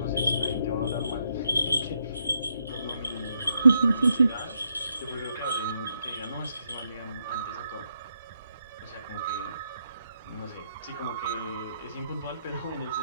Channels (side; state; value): both; inverted; correlation -0.79